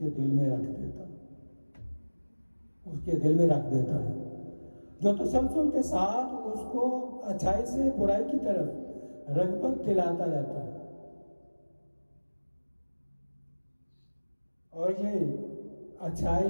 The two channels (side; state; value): both; inverted; correlation -1.00